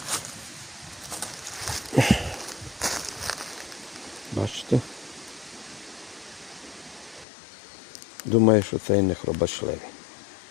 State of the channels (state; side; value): drops out; right; at 7.2 s